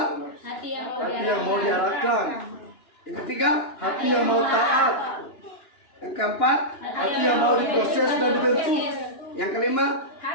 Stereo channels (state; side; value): late; right; 2.9 ms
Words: Hati yang Hati yang mau diarahkan. yang ketiga, Hati yang mau taat. yang keempat, Hati yang mau diproses dan dibentuk. yang kelima.